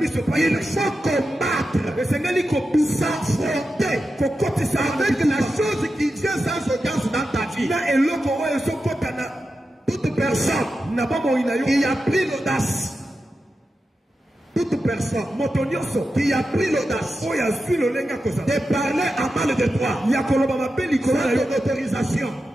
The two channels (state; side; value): normal; both; correlation 0.90